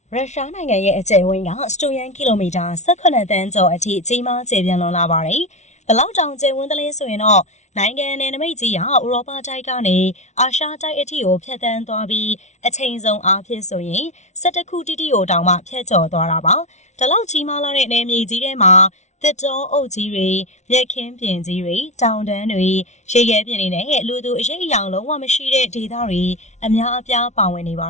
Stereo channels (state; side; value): late; right; 0.33 ms